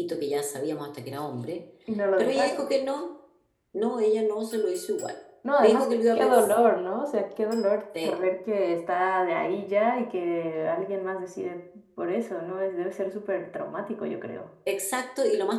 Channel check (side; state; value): both; identical; correlation 1.00